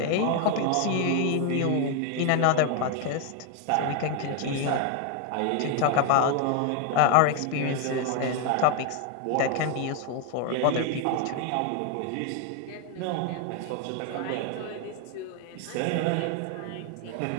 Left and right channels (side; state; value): both; different; correlation 0.01